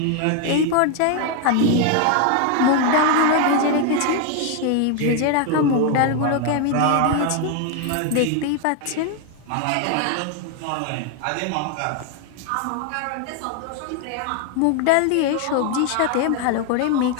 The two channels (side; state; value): both; different; correlation 0.01